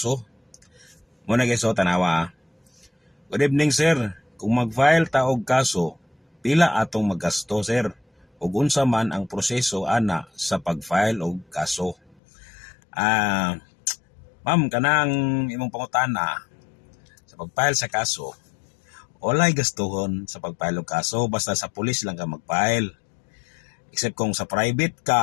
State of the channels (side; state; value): right; drops out; at 12.2 s